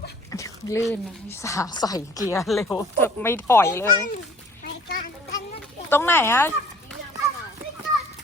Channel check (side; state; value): both; normal; correlation 0.52